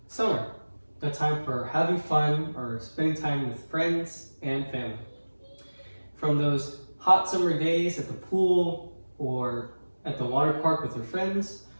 Summer, a time for having fun or spending time with friends and family. From those hot summer days at the pool or at the water park with your friends,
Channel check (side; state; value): both; inverted; correlation -1.00